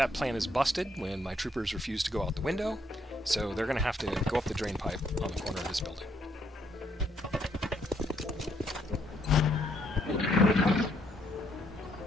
plan is busted when my troopers refuse to go out the window, So they're going to have to go up the drain pipe on the corner of this building.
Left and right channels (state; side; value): normal; both; correlation 0.71